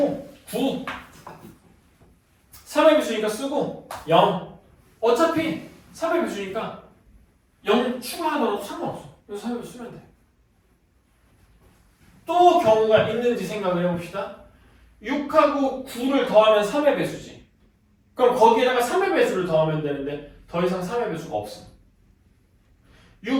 9 3의 배수니까 쓰고 0 어차피 3의 배수니까 0 추가하더라도 상관없어. 그래서 3의 배수 쓰면 돼. 또 경우가 있는지 생각을 해봅시다. 6하고 9를 더하면 3의 배수지. 그럼 거기에다가 3의 배수를 더하면 되는데 더 이상 3의 배수가 없어.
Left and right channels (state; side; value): identical; both; correlation 1.00